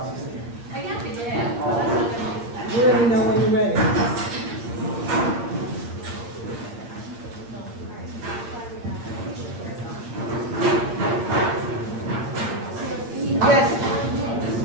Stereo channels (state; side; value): late; left; 8.7 ms